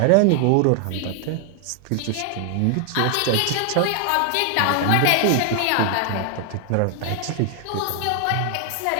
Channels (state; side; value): different; both; correlation 0.00